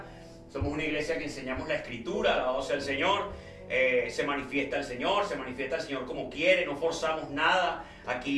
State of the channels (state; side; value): identical; both; correlation 1.00